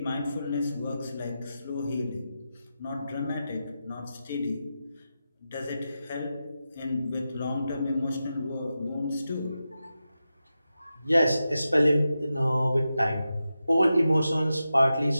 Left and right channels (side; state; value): both; inverted; correlation -0.91